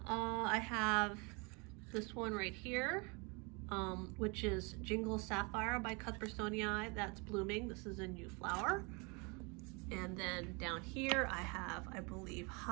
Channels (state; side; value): quieter; left; 30.5 dB